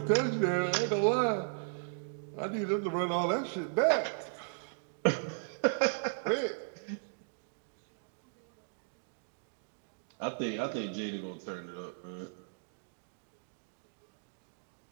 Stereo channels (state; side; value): silent; left; digital silence